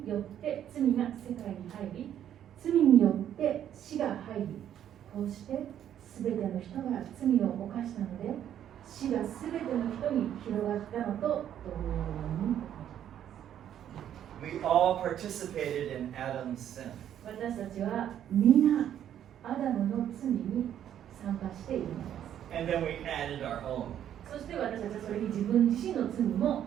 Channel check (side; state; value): left; quieter; 10.3 dB